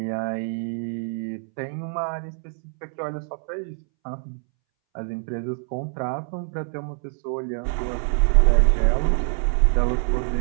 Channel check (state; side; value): silent; left; 62 dB below the other